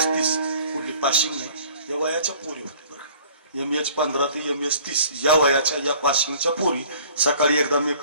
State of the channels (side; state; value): both; inverted; correlation -0.51